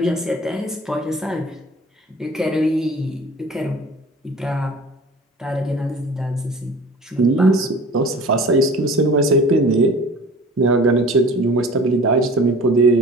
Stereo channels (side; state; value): both; normal; correlation 0.44